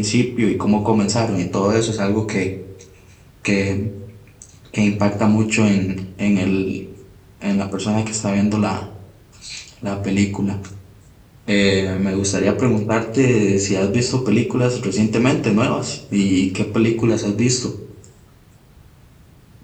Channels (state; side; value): identical; both; correlation 1.00